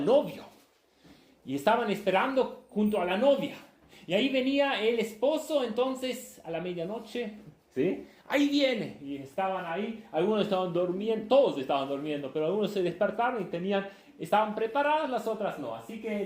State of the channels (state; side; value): identical; both; correlation 1.00